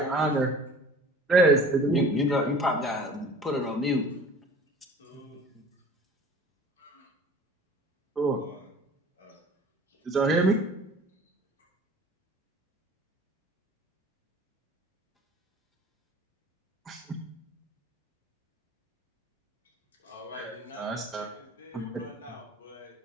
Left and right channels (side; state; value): both; normal; correlation 0.45